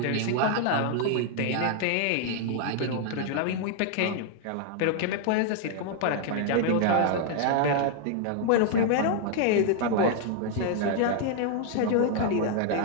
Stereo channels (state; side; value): different; both; correlation 0.00